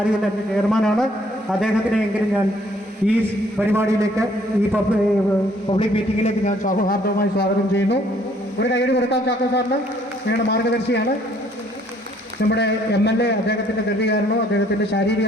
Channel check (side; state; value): both; normal; correlation 0.63